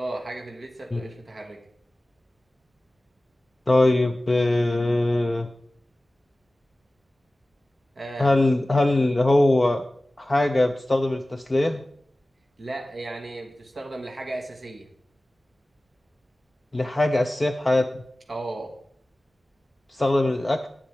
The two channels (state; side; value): normal; both; correlation 0.97